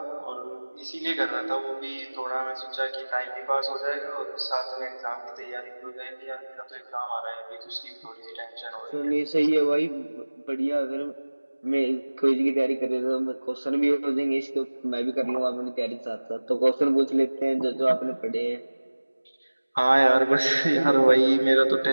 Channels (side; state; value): both; inverted; correlation -1.00